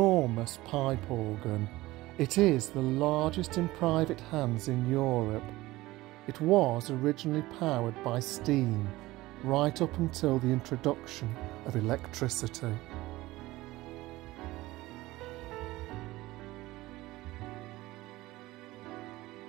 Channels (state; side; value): quieter; left; 18.5 dB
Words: pipe organ. It is the largest in private hands in Europe. It was originally powered by steam, right up until the introduction of electricity.